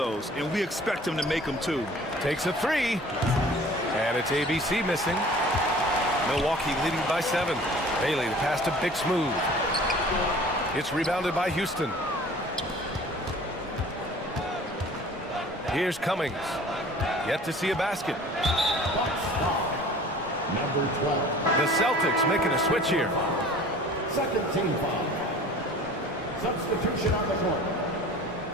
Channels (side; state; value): both; normal; correlation 0.47